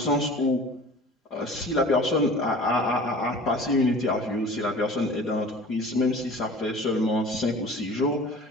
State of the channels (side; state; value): both; normal; correlation 0.42